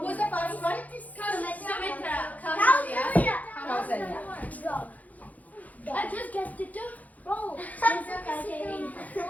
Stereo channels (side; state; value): right; late; 0.076 ms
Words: the first one? Sumitra. Kausalya. I just guessed it too. Roll.